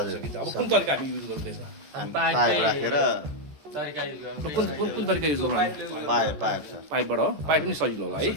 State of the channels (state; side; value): late; left; 14 ms